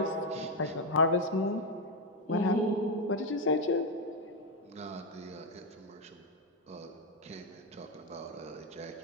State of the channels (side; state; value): both; normal; correlation 0.05